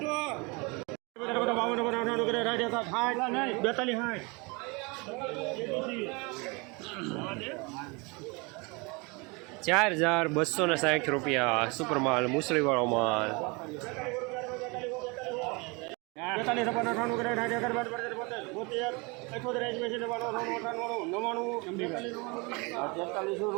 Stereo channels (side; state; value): left; quieter; 28.4 dB